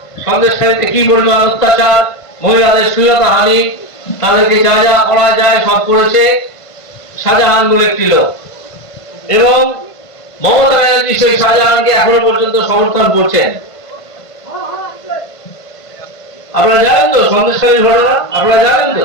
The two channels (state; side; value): late; right; 1.5 ms